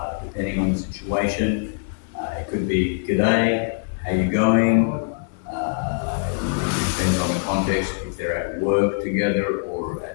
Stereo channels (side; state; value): right; silent; digital silence